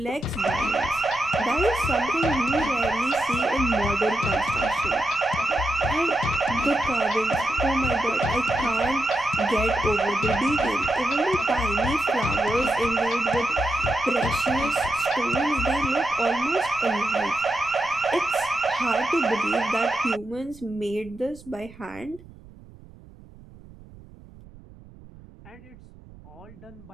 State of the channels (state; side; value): noise; right; rumble, 21 dB below the sound